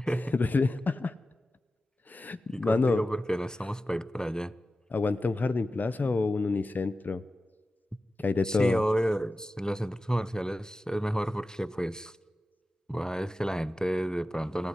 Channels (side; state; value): both; normal; correlation 0.94